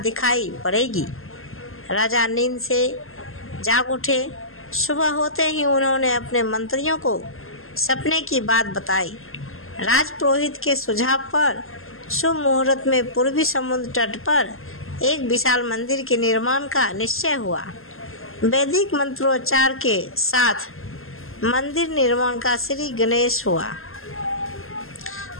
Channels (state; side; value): late; right; 0.61 ms